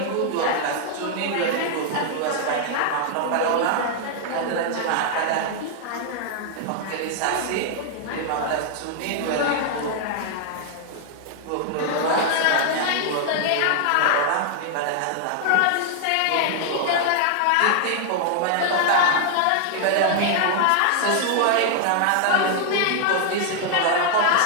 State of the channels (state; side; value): different; both; correlation 0.00